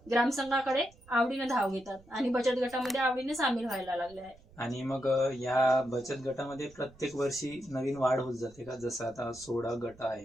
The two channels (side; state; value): right; noise; rumble, 25 dB below the sound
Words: ग्रामसंघाकडे आवडीनं धाव घेतात आणि बचत गटामध्ये आवडीने सामील व्हायला लागले आहे. आणि मग या बचत गटामध्ये प्रत्येक वर्षी नवीन वाढ होत जाते का? जसं आता 16 गट